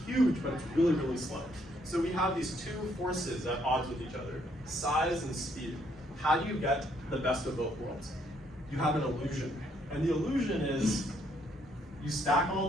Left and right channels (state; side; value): normal; both; correlation 0.70